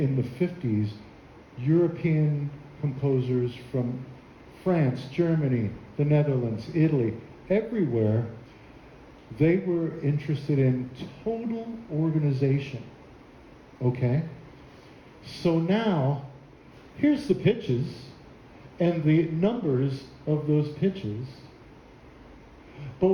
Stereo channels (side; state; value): both; identical; correlation 1.00